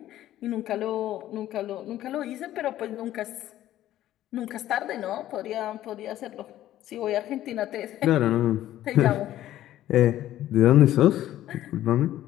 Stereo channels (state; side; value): quieter; right; 13.4 dB